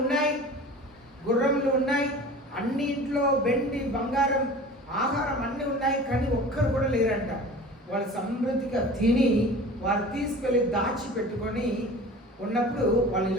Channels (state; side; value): normal; both; correlation 0.39